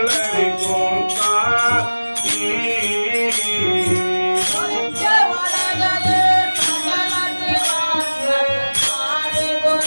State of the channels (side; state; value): both; inverted; correlation -1.00